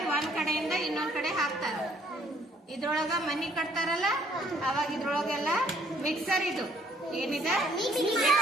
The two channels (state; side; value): normal; both; correlation 0.64